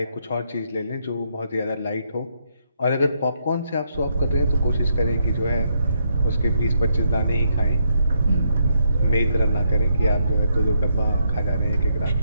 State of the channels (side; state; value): both; inverted; correlation -0.76